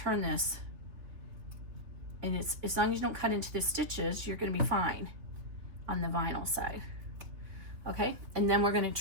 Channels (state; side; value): late; left; 3.6 ms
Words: this. And it's, as long as you don't cut into the stitches, you're going to be fine on the vinyl side. Okay, and then we're going to